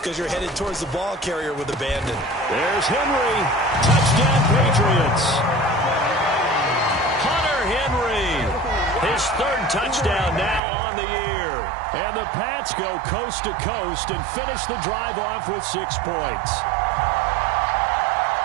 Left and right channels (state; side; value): drops out; left; at 10.6 s